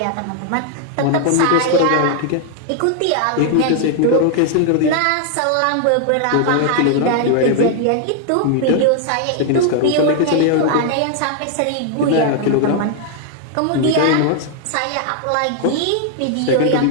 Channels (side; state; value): both; different; correlation 0.00